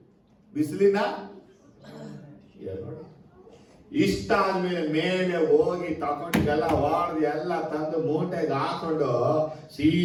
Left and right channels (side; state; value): both; identical; correlation 1.00